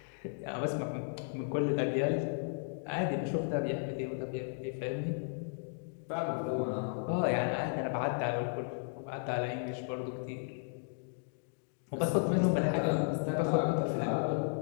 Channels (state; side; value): silent; right; digital silence